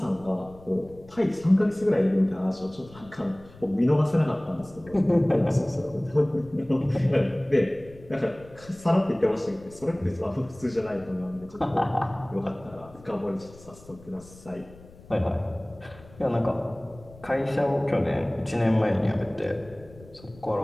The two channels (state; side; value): noise; left; rumble, 22 dB below the sound